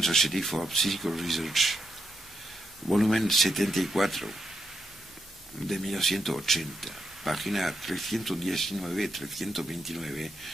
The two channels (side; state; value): both; normal; correlation 0.82